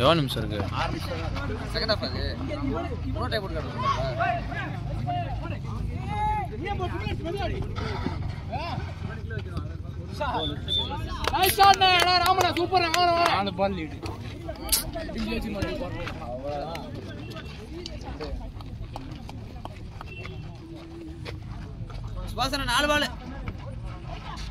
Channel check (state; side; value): identical; both; correlation 1.00